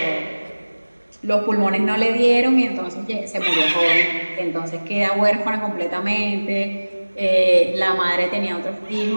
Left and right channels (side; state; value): both; inverted; correlation -1.00